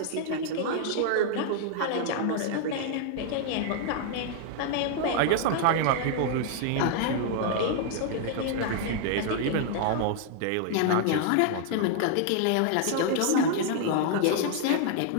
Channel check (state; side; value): different; both; correlation 0.00